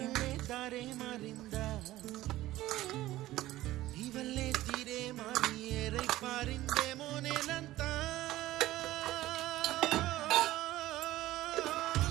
దారే మారిందా, నీవల్లే తీరే మారి ఏరై పారిందేమో నేలంతా.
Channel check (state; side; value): quieter; left; 16.0 dB